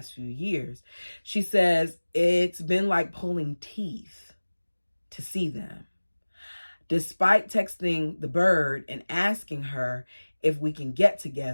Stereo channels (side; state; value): both; inverted; correlation -1.00